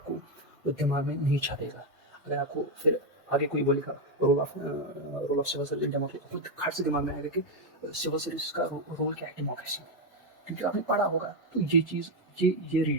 दिमाग में नहीं छपेगा। अगर आपको फिर आगे कोई बोलेगा role of civil service democracy, तो खट से दिमाग में आएगा कि सिविल सर्विस का रोल क्या है डेमोक्रेसी में, क्योंकि आपने पढ़ा होगा। तो ये चीज़ ये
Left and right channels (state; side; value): normal; both; correlation 0.05